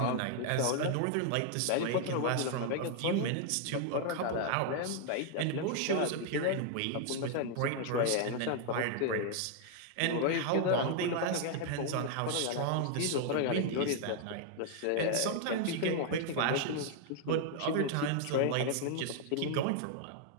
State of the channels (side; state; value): both; different; correlation 0.00